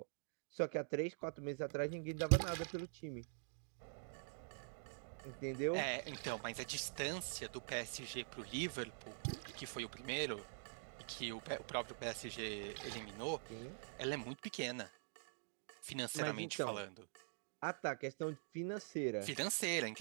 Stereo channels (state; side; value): silent; left; digital silence